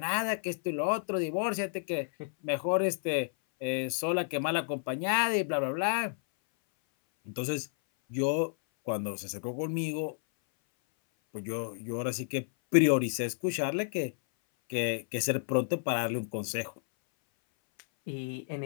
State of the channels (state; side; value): silent; right; 57 dB below the other